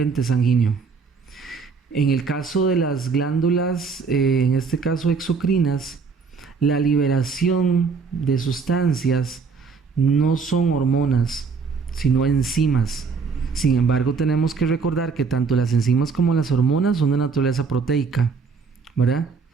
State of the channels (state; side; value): quieter; left; 5.1 dB